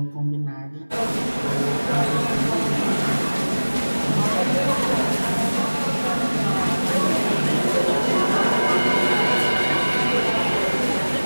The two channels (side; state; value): both; inverted; correlation -1.00